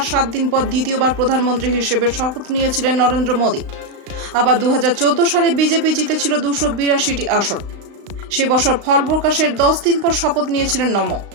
7 দিন পর দ্বিতীয়বার প্রধানমন্ত্রী হিসেবে শপথ নিয়েছিলেন নরেন্দ্র মোদী। আবার 2014 সালে বিজেপি জিতেছিল 282টি আসন। সে বছর ফল প্রকাশের 10 দিন পর শপথ নিয়েছিলেন নমো।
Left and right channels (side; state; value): left; late; 35 ms